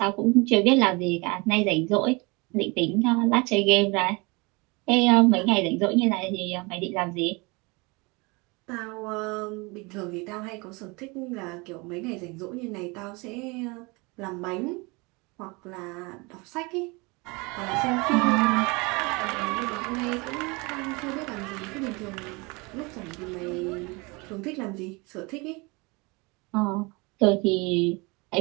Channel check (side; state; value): left; quieter; 27.0 dB